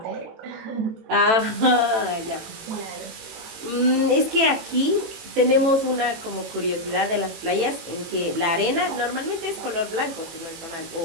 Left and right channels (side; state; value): left; late; 18 ms